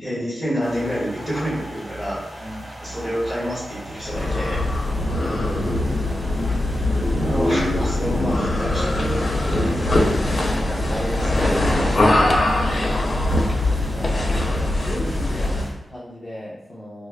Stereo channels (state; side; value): normal; both; correlation 0.89